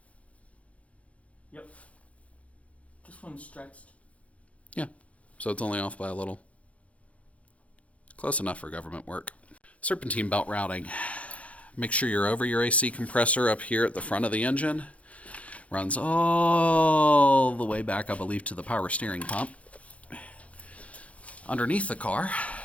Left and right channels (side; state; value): right; late; 0.065 ms